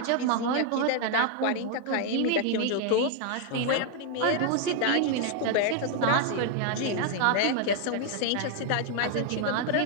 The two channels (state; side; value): different; both; correlation 0.00